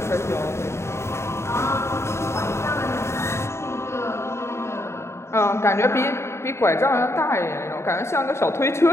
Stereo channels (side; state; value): right; late; 0.13 ms